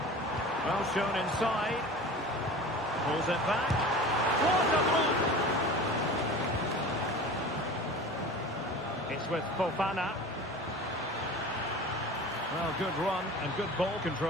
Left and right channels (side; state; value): both; normal; correlation 0.37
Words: Well shown inside. Pulls it back. What a block! It's with Fofana. Well, good run and good ball